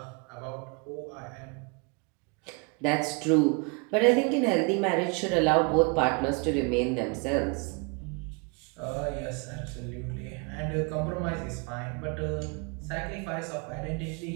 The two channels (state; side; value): quieter; left; 32.6 dB